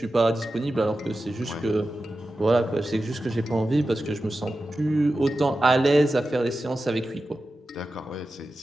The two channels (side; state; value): both; normal; correlation 0.93